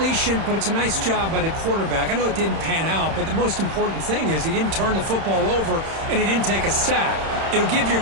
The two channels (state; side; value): late; left; 31 ms